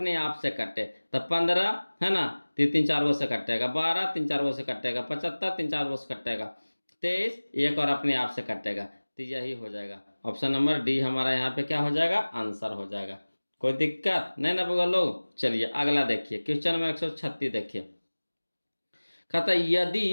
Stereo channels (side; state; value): both; inverted; correlation -1.00